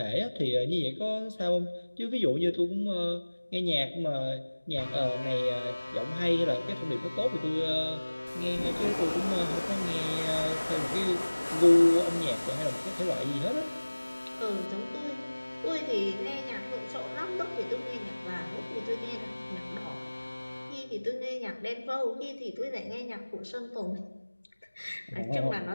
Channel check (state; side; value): inverted; both; correlation -1.00